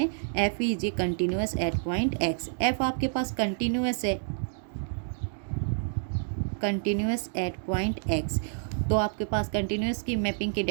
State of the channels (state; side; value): silent; left; digital silence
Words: F is a continuous at point X, F आपके पास कंटिन्यूअस है, कंटिन्यूअस एट पॉइंट एक्स, तो आपके पास कंटिन्यूअस की मैपिंग की